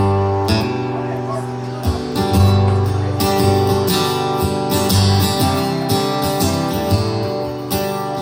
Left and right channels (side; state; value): both; identical; correlation 1.00